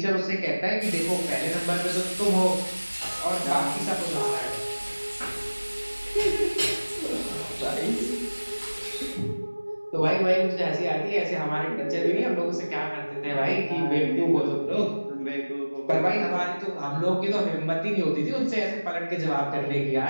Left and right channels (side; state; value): both; inverted; correlation -1.00